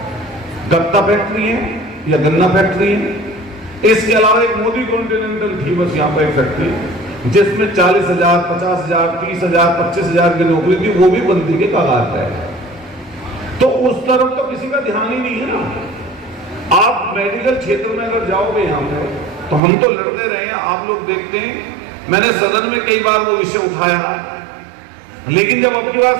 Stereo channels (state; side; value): drops out; left; at 19.6 s